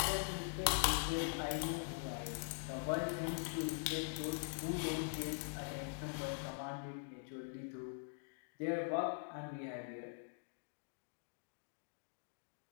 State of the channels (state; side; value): silent; right; digital silence